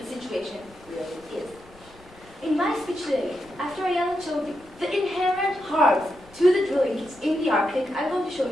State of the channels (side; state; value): left; noise; rumble, 24 dB below the sound